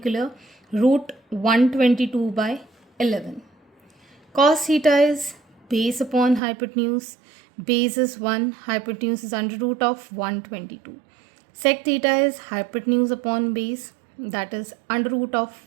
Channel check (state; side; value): drops out; left; at 6.4 s